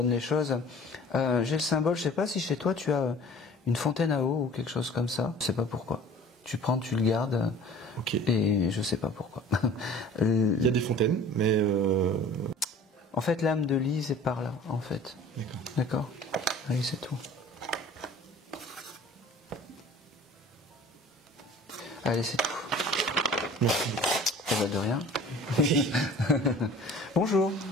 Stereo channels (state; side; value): normal; both; correlation 0.46